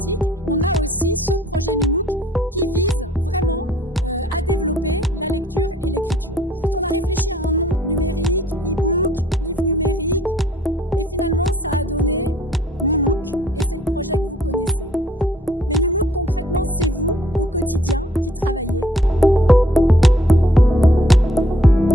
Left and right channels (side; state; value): both; normal; correlation 0.61